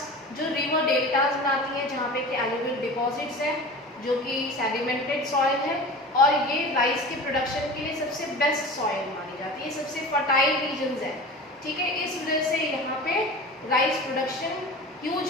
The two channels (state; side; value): normal; both; correlation 0.35